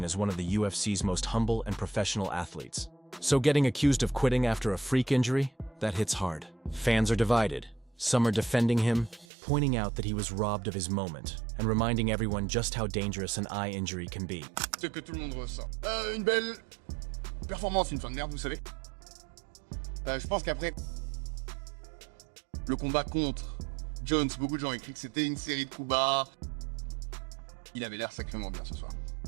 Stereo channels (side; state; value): left; drops out; at 9.2 s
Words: as one of the UFC's most humble and professional athletes. So getting accused of quitting after a freak injury? That hits hard. Fans are divided. Some are defending him, pointing out that he was robbed of his moment, and reminding everyone just how dangerous an eye injury can be. Ce que tout le monde ressent. Une belle performance, une fin de merde, vous savez. Je pense qu'après le combat contre Jones, beaucoup de gens ont écrit que c'était une série de coups bas. Il avait l'air sacrément bien ce soir.